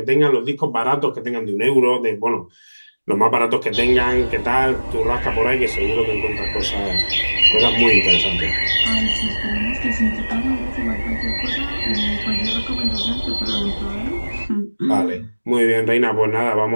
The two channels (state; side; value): inverted; both; correlation -1.00